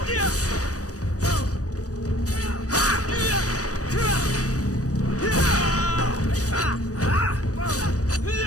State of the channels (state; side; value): late; right; 0.66 ms